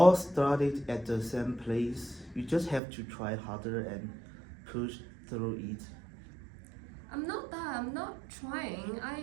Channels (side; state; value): left; drops out; at 2.8 s